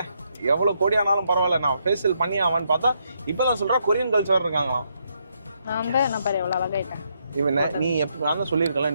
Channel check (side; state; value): both; inverted; correlation -0.77